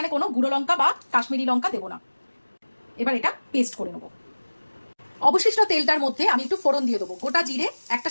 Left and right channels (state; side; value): inverted; both; correlation -1.00